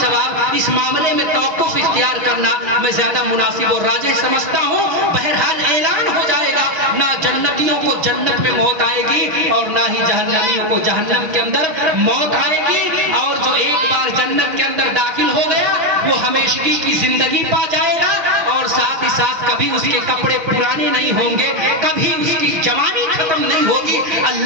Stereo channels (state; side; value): late; left; 6.1 ms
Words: اس معاملے میں توقف اختیار کرنا میں زیادہ مناسب اور راجح سمجھتا ہوں۔ بہرحال اعلان ہو جائے گا، نہ جنتیوں کو جنت میں موت آئے گی اور نہ ہی جہنمیوں کو جہنم کے اندر موت آئے گی، اور جو ایک بار جنت کے اندر داخل ہو گیا وہ ہمیشگی کی زندگی پا جائے گا، اور ساتھ ہی ساتھ کبھی اس کے کپڑے پرانے نہیں ہوں گے، کبھی اس کی جوانی ختم نہیں ہوگی۔